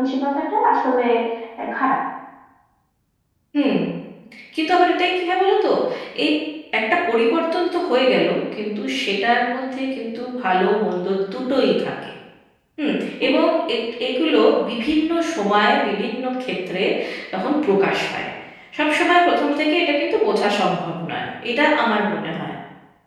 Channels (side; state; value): both; identical; correlation 1.00